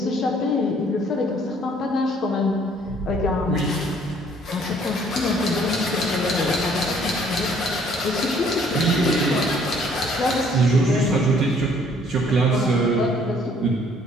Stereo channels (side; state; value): both; normal; correlation 0.60